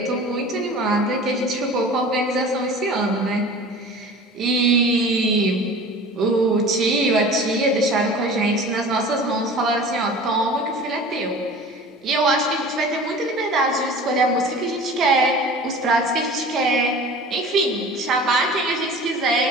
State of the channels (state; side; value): normal; both; correlation 0.40